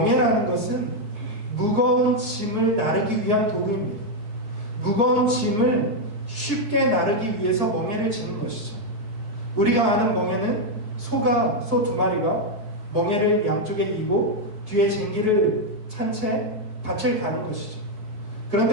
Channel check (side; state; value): left; late; 4.6 ms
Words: 것은 무거운 짐을 나르기 위한 도구입니다. 무거운 짐을 쉽게 나르기 위해서 멍에를 지는 것이죠. 우리가 아는 멍에는 소 2마리가 멍에를 양쪽에 이고 뒤에 쟁기를 찬 채 밭을 가는 것이죠.